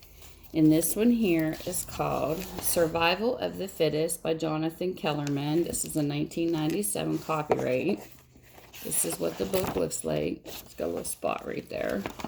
And this one here is called Survival of the Fittest by Jonathan Kellerman. This is a 1997 copyright. This is what the book looks like. It's got a little spot right there.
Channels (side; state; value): both; identical; correlation 1.00